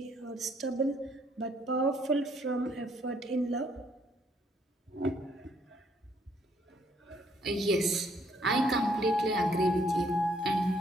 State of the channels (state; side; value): normal; both; correlation 0.67